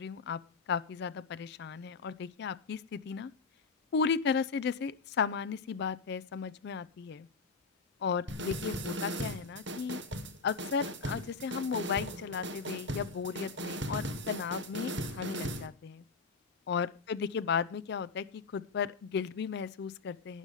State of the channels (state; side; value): quieter; right; 4.7 dB